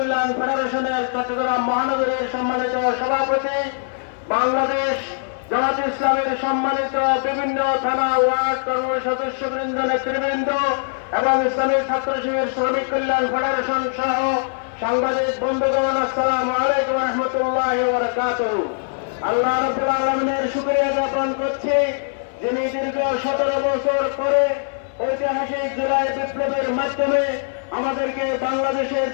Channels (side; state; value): right; silent; 62 dB below the other